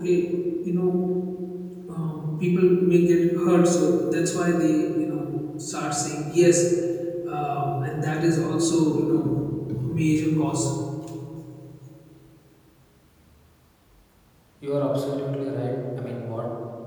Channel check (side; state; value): both; identical; correlation 1.00